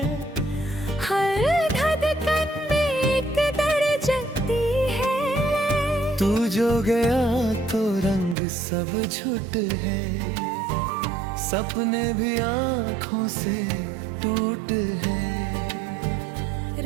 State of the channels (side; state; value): left; drops out; at 8.3 s